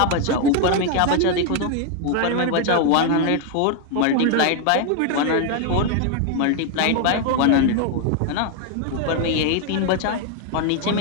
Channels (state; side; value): different; both; correlation 0.01